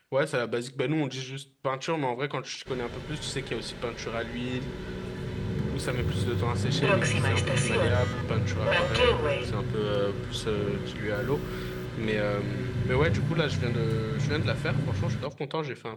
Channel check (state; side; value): identical; both; correlation 1.00